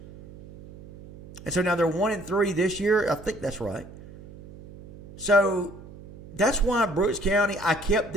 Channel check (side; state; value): right; noise; hum, 18 dB below the sound